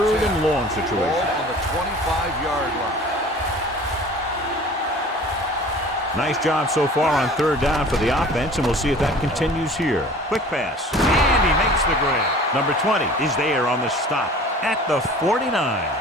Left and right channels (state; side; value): normal; both; correlation 0.45